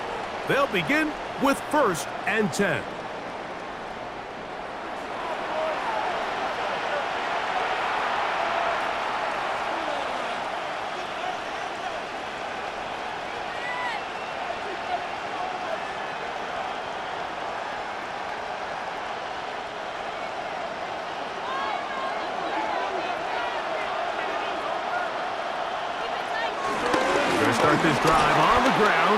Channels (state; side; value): identical; both; correlation 1.00